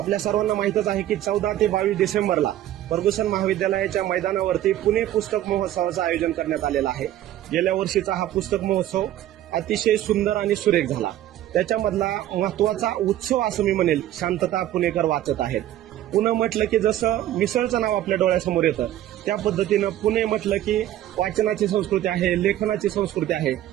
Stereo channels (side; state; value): left; quieter; 12.9 dB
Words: सर्वांना माहितच आहे की 14 ते 22 डिसेंबरला फर्ग्युसन महाविद्यालयाच्या मैदानावरती पुणे पुस्तक महोत्सवाचं आयोजन करण्यात आलेलं आहे. गेल्या वर्षीचा हा पुस्तक महोत्सव अतिशय सुंदर आणि सुरेख झाला. त्याच्यामधला महत्वाचा उत्सव असं मी म्हणेल, शांतता पुणेकर वाचत आहेत. पुणे म्हटलं की जसं मिसळचं नाव आपल्या डोळ्यासमोर येतं, त्या पद्धतीनं पुणे म्हटलं की वाचनाची संस्कृती आहे, लेखनाची संस्कृती आहे.